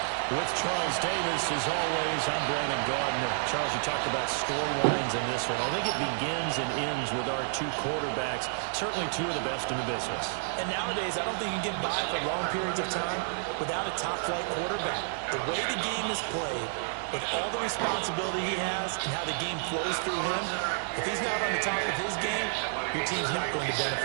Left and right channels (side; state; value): left; silent; digital silence